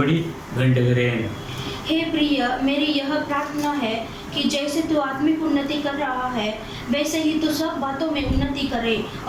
வேண்டுகிறேன். हे प्रिय, मेरी यह प्रार्थना है कि जैसे तू आत्मिक उन्नति कर रहा है वैसे ही तू सब बातों में उन्नति करे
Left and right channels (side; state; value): both; identical; correlation 1.00